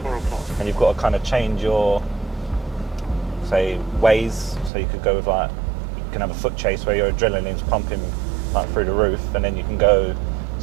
and you've got to kind of change your, say, ways. So you could go with you can have a foot chase where your adrenaline's pumping through the roof, and then you can go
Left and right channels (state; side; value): drops out; left; at 4.7 s